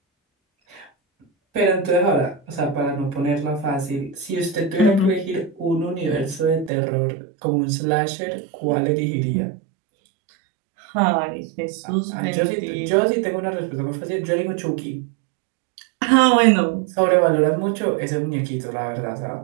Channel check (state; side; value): drops out; left; at 6.7 s